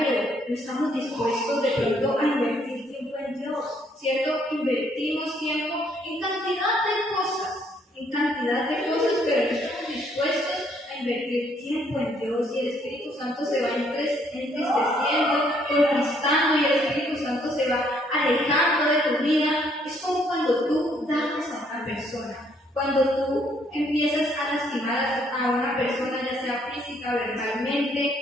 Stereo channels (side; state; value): both; normal; correlation 0.67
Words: no estamos dispuestos de pronto a invertir tiempo en Dios, ¿cierto? Invertimos tiempo en cantidad de cosas, pero no estamos dispuestos a invertir tiempo en Dios, y el Espíritu Santo se va entristeciendo, conquistando, y el Espíritu Santo se va alejando de tu vida. Es como cuando tú dañas a una persona. Cuando tú empiezas a lastimar a una persona, ya sea física, verbalmente,